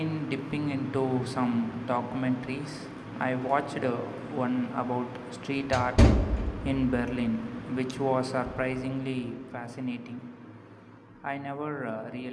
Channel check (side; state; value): both; identical; correlation 1.00